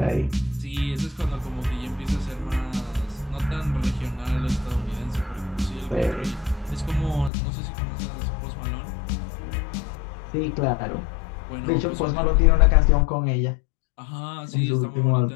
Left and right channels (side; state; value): right; drops out; at 7.3 s